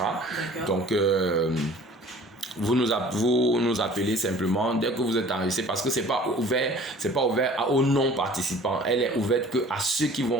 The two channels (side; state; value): both; normal; correlation 0.48